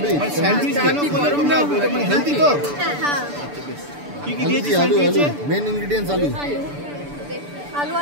স্যান্ডউইচ কেন গরম না? মানে হেলদি তো? হ্যাঁ হ্যাঁ। কি কি দিয়েছি আলু, আলু, স্যান্ডউইচে? মেন ইনগ্রেডিয়েন্টস আলু।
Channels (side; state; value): left; late; 6.9 ms